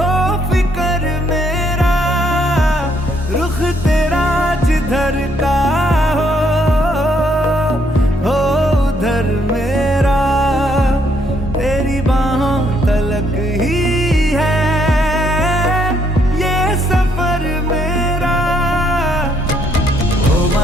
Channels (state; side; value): normal; both; correlation 0.71